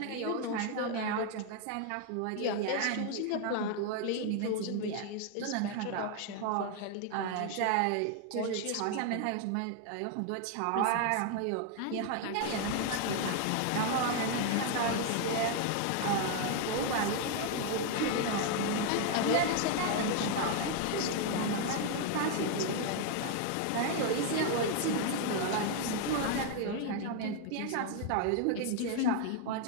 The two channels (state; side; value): different; both; correlation 0.00